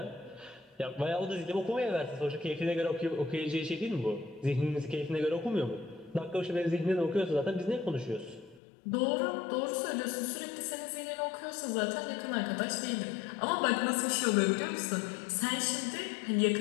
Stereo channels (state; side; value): drops out; right; at 8.6 s